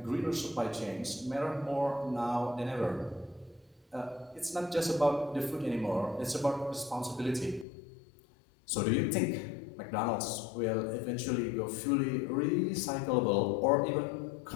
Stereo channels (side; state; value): right; drops out; at 7.7 s